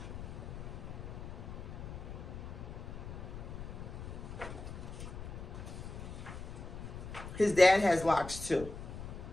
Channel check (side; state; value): left; noise; rumble, 9 dB below the sound